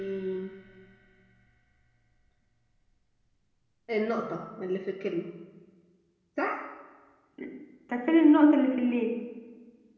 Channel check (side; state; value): both; identical; correlation 1.00